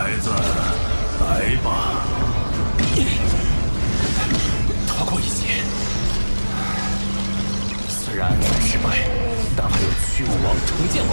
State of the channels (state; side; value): inverted; both; correlation -1.00